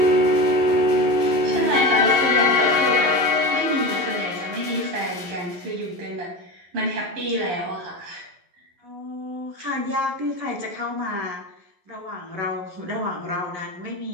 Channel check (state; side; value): late; left; 11 ms